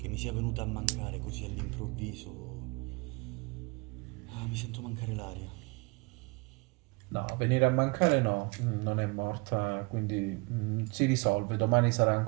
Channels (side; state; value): left; quieter; 29.1 dB